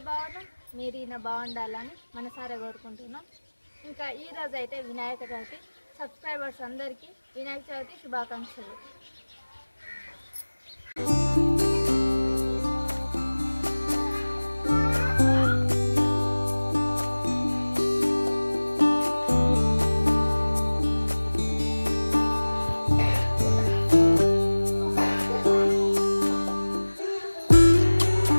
బాగున్నాం, మీరు ఈయన బాగుండాలని మనసారా కోరుకుంటున్నాం. ఇంకా ఈరోజు అయితే వినాయక చవితి. సబ్స్క్రైబర్స్ అందరికీ వినాయక చవితి శుభాకాంక్షలు.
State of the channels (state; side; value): inverted; both; correlation -1.00